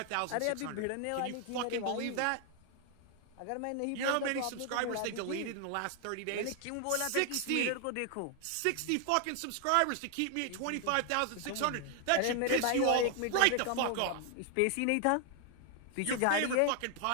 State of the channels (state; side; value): different; both; correlation 0.00